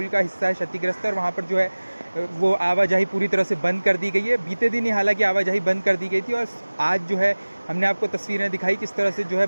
का हिस्सा है क्षतिग्रस्त है और वहाँ पर जो है वो आवाजाही पूरी तरह से बंद कर दी गई है। बीते दिन ही हालांकि आवाजाही बंद कर दी गई थी और आज जो है हमने आपको तस्वीरें दिखाई किस तरह से जो है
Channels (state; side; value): inverted; both; correlation -1.00